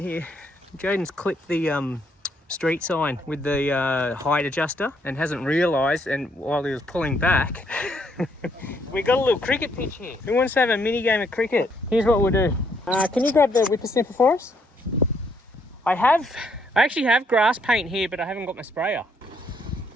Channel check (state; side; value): normal; both; correlation 0.71